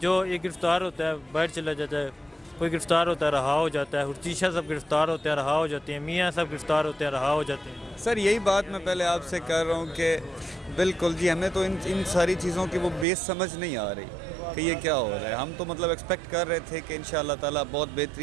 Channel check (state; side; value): drops out; left; at 13.1 s